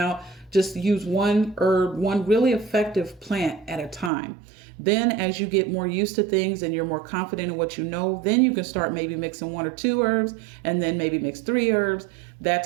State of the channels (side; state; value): left; drops out; at 4.1 s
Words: Just use one herb, one really effective plant at a time. Then as you get more used to things and you're more confident in what you know, then you can start maybe mixing 1 or 2 herbs, and then maybe mix 3 herbs, that